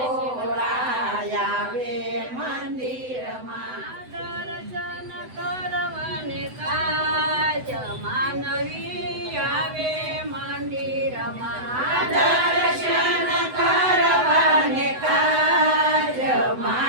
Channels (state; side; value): late; left; 7.9 ms